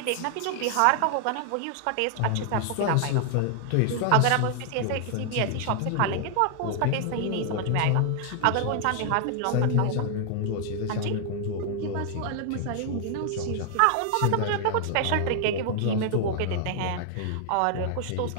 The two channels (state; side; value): different; both; correlation 0.00